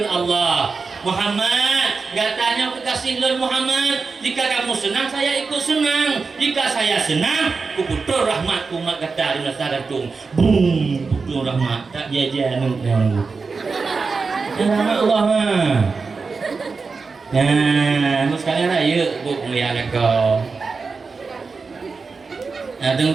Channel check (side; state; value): left; quieter; 4.6 dB